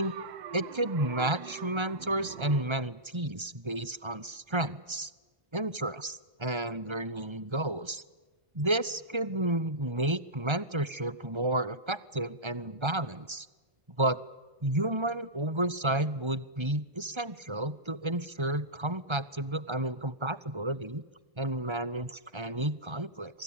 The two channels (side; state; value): left; late; 1.3 ms